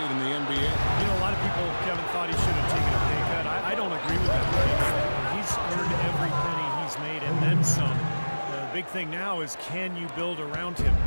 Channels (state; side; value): inverted; both; correlation -1.00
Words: in the NBA. You know, a lot of people, Kevin, thought he should have taken a pay cut. I don't agree with that. He's earned every penny he's made and then some. The big thing now is, can you build around him,